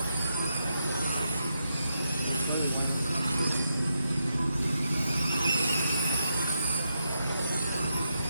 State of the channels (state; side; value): inverted; both; correlation -0.83